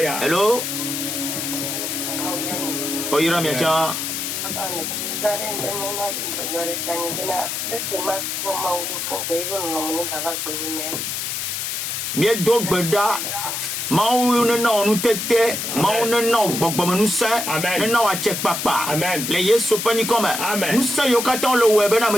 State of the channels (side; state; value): left; noise; hiss, 3 dB below the sound